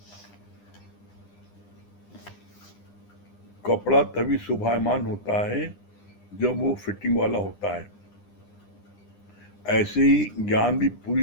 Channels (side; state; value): right; late; 9.9 ms